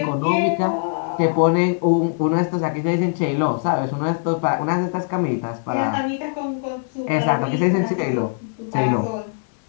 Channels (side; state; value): right; silent; 65 dB below the other